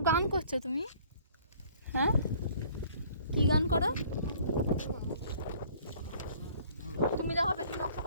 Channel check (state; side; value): inverted; both; correlation -0.55